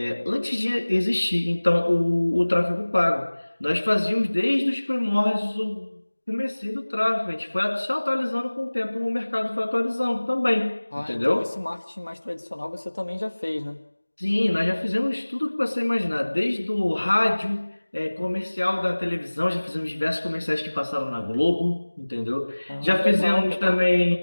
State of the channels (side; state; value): both; inverted; correlation -1.00